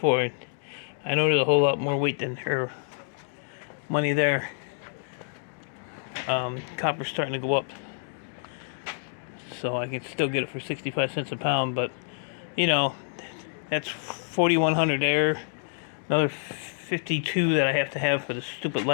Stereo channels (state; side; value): silent; right; digital silence